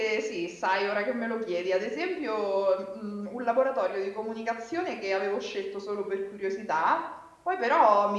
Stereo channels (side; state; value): both; identical; correlation 1.00